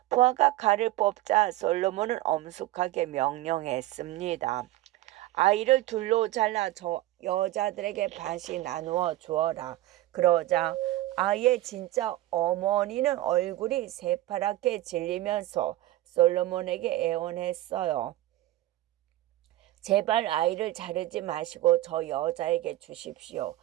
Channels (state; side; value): quieter; left; 15.9 dB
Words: 부하가 칼을 뽑자 솔로몬은 엄숙하게 명령했습니다. 아이를 둘로 잘라 저 여자들에게 반씩 나누어 주어라. 그러자 아이의 진짜 어머니는 얼굴이 새파랗게 질리면서 솔로몬에게 애원했어요. 제발 아이를 자르지 마시고 저 여자에게 주십시오.